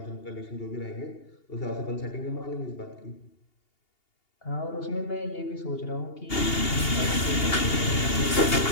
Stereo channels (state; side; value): late; right; 2.8 ms